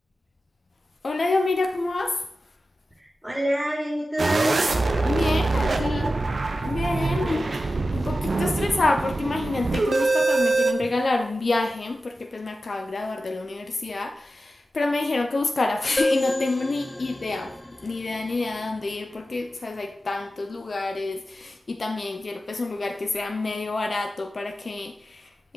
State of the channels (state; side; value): normal; both; correlation 0.93